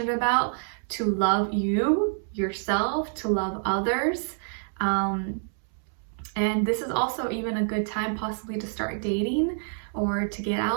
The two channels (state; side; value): silent; left; 60 dB below the other